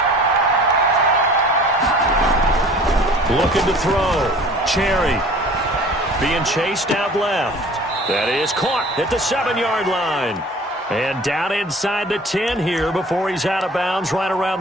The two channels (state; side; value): normal; both; correlation 0.47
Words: Looking to throw. Cherry being chased out left. That is caught at the 7-yard line. And down inside the 10 here before he's out of bounds right around